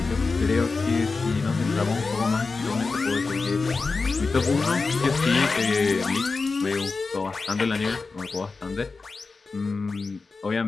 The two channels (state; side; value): quieter; right; 4.2 dB